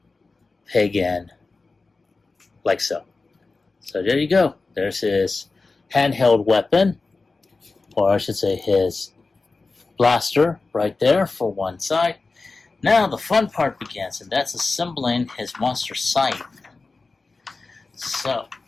peg in like so. So there you go. There's his handheld weapon, or I should say his blaster right there for one side. Now the fun part begins, and that's assembling his monster scythe. So,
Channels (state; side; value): quieter; right; 3.8 dB